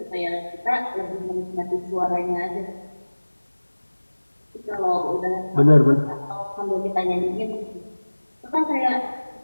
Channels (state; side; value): inverted; both; correlation -1.00